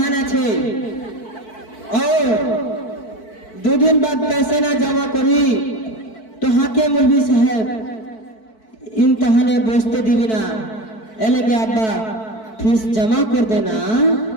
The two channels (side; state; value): right; late; 4.6 ms